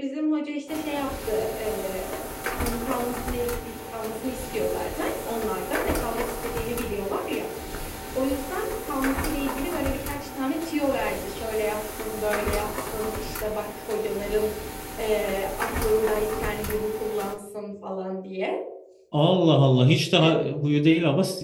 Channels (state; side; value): identical; both; correlation 1.00